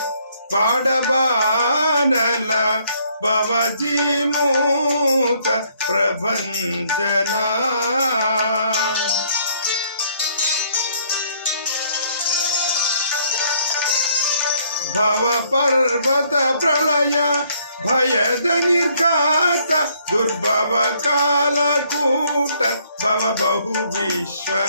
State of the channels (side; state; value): both; inverted; correlation -0.66